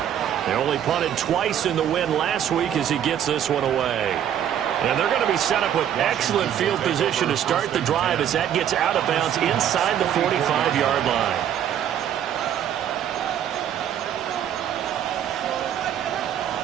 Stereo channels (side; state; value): left; quieter; 10.0 dB